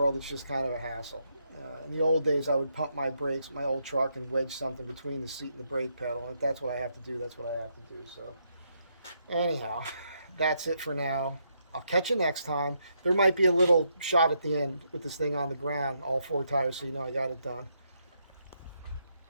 it's just kind of a hassle. In the old days, I would pump my brakes with my old truck and wedge something between the seat and the brake pedal, and if that's what I have to do, that's what I have to do. So anyhow, that's it for now. I'll catch you next time. There might be a little shot at the end with this thing on the ground, all 4 tires, so you know I got it done.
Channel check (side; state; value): both; inverted; correlation -0.78